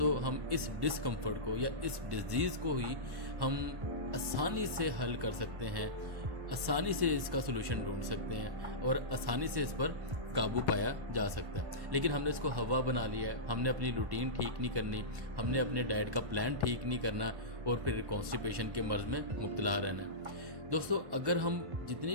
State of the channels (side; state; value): left; late; 1.5 ms